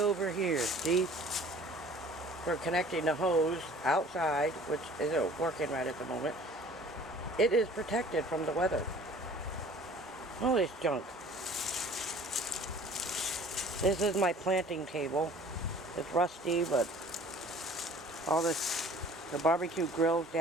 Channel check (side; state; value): both; normal; correlation 0.49